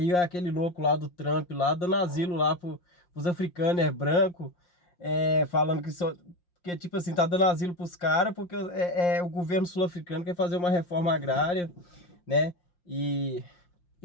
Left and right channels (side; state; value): right; late; 5.7 ms